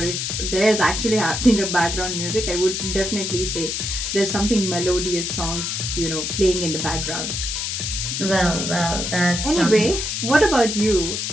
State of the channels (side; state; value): left; noise; hiss, 2 dB below the sound